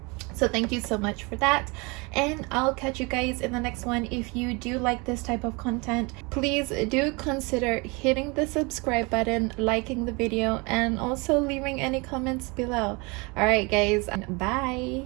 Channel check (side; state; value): left; quieter; 28.0 dB